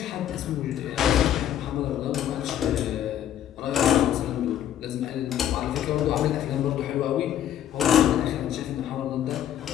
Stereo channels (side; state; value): right; quieter; 10.8 dB